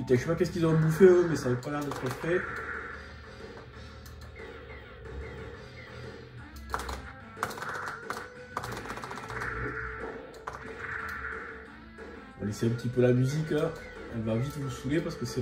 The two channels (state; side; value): identical; both; correlation 1.00